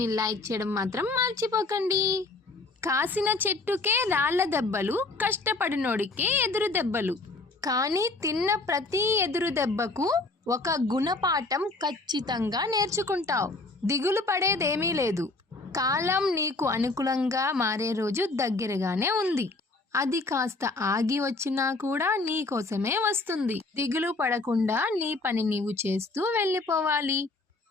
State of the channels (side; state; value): right; quieter; 3.4 dB